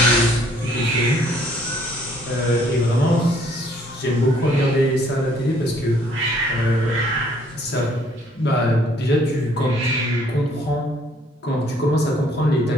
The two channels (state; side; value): normal; both; correlation 0.63